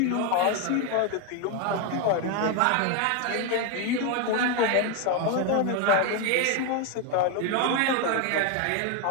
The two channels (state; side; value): different; both; correlation 0.01